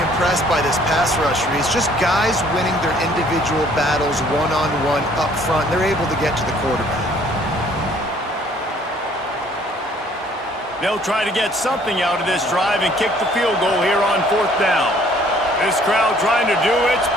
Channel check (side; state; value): both; normal; correlation 0.59